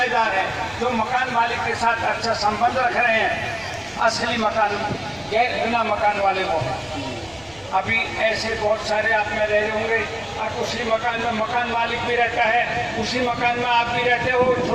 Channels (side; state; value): left; noise; rumble, 27 dB below the sound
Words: हैं, जो मकान मालिक के साथ अच्छा संबंध रख रहे हैं, असली मकान गैर बिना मकान वाले वो हैं। अभी ऐसे बहुत सारे आप में रह रहे होंगे, आप उसी मकान में मकान मालिक भी रहता है, उसी मकान में आप भी रहते हो,